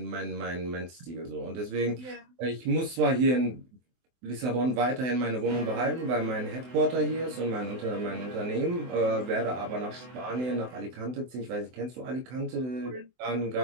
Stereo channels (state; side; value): late; left; 24 ms